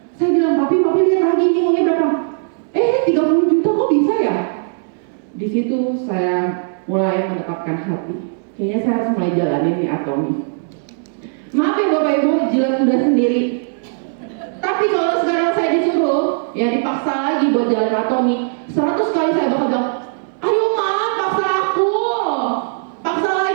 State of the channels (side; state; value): left; silent; 67 dB below the other